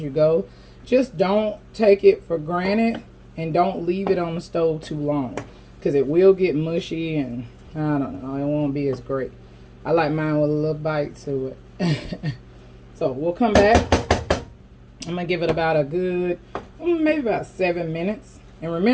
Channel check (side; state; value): both; identical; correlation 1.00